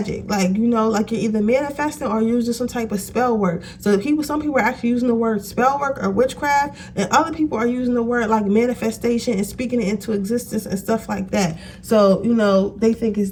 like, you know, like you're either manifesting or using some type of spell work. So some people are actually using the word spell work or witchcraft, and other people are using the word like manifestation and speaking it into existence and stuff like that. So, you know, they think it's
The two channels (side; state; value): both; identical; correlation 1.00